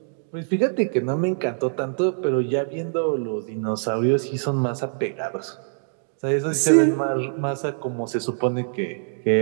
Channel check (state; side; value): silent; left; digital silence